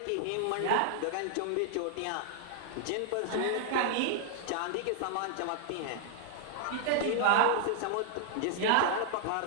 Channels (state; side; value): different; both; correlation 0.00